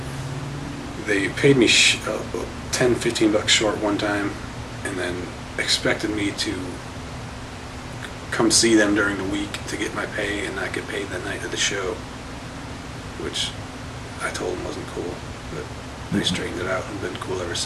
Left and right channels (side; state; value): both; identical; correlation 1.00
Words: they paid me $10-15 short one time, and then expected me to come see them during the week to get my pay and not get paid the night of the show, which I told them wasn't cool, but they straightened it out and been cool ever